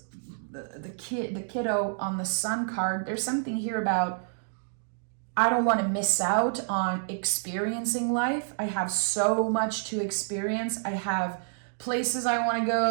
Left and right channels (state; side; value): silent; left; digital silence